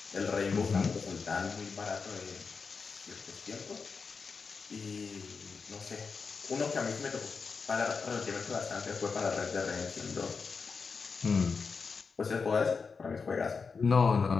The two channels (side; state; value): right; quieter; 5.1 dB